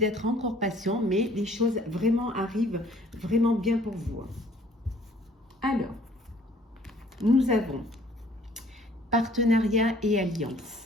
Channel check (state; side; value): normal; both; correlation 0.57